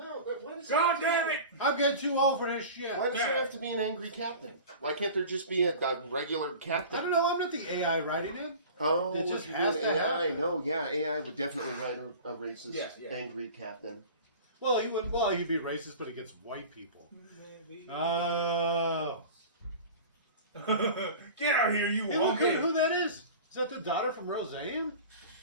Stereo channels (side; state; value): both; inverted; correlation -0.38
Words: but what is God damn it! I'm getting too old for this shit. Why does there have to be an angry captain? Why can't there just be a regular captain? I don't know. I'm not the AI writing it. Oh, It just if has you're doing to AI. happen. No, yeah, AI would definitely write a racist, Yeah. angry captain. Well, he would. Well, he'd be racist, but against white people. Maybe. Oh. Get out of here, you Hey, look at woman! who that is. Is that the daughter from Roseanne?